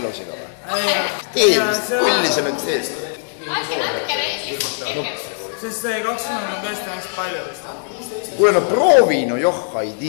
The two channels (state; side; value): silent; right; 66 dB below the other